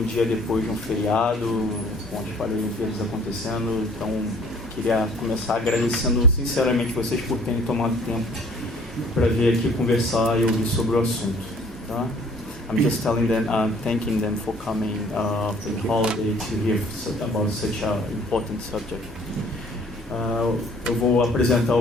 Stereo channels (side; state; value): both; normal; correlation 0.56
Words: dia depois de um feriado, com as Paralimpíadas acontecendo. Então queria começar agradecendo sinceramente vocês por terem tomado tempo para vir aqui conversar e ouvir sobre o assunto, tá? I'm just telling them, thanking them for coming for the holiday to hear about such an important subject. Eu vou apresentar